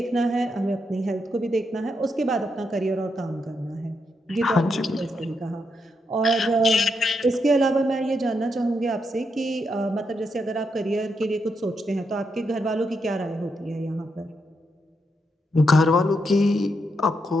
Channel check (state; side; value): normal; both; correlation 0.81